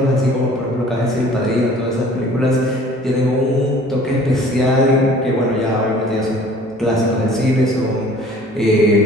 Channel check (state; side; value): normal; both; correlation 0.51